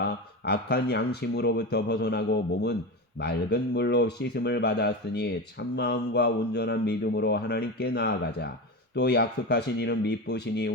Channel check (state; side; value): normal; both; correlation 0.22